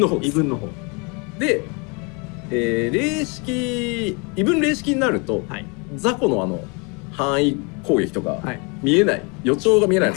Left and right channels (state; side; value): quieter; right; 31.7 dB